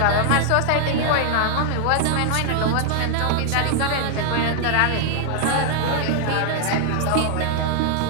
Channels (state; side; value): different; both; correlation 0.00